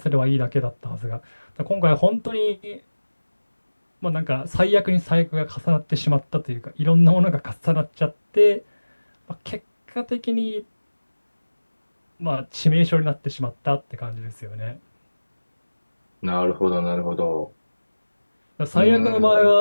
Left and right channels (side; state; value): both; inverted; correlation -1.00